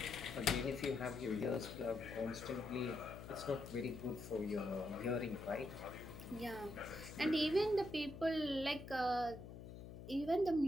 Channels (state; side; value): noise; left; hum, 12 dB below the sound